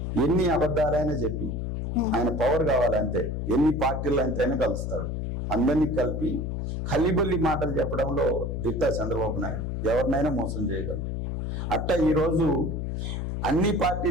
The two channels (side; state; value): left; noise; hum, 3 dB below the sound